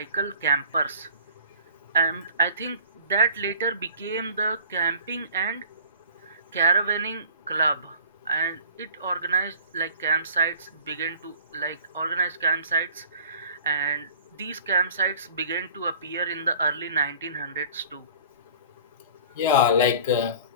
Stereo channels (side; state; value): both; inverted; correlation -0.47